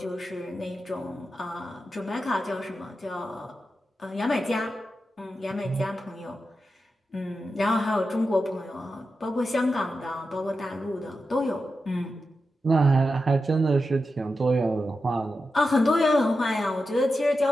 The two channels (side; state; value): both; normal; correlation 0.90